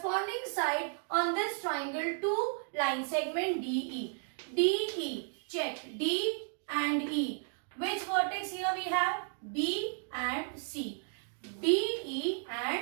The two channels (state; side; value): silent; left; 55 dB below the other